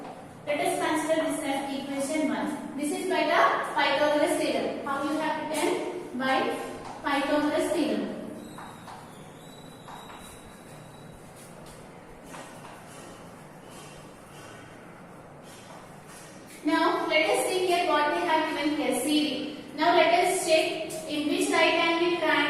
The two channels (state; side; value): identical; both; correlation 1.00